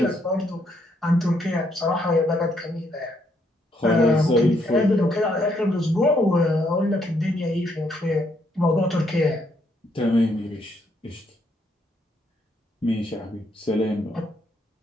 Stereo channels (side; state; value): both; normal; correlation 0.73